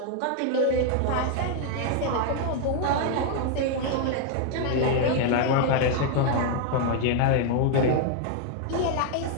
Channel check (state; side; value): different; both; correlation 0.01